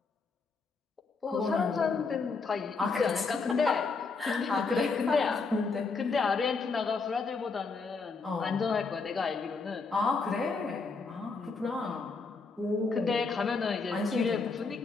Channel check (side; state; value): right; quieter; 4.5 dB